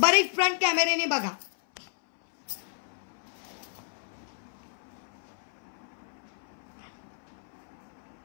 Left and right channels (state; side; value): silent; right; 57 dB below the other